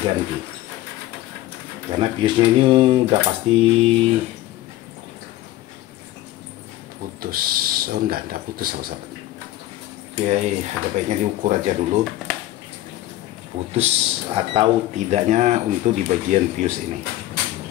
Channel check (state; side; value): quieter; right; 15.4 dB